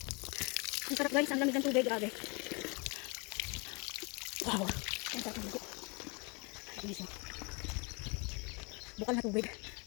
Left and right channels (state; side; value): quieter; right; 30.8 dB